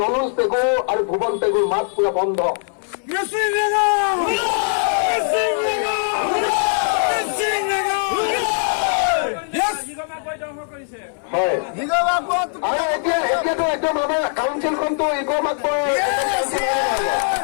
ৰমেশ পেগু আৰু ভুৱন পেগুৰ মাত পুৰা বন্ধ হয় আৰু এতিয়াতো একদম আমাৰ কাউন্সিলখনতো ইগৰ মাতবৰ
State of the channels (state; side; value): silent; right; 62 dB below the other